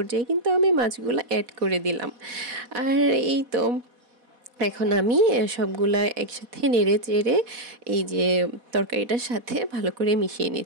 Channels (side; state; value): left; late; 4.1 ms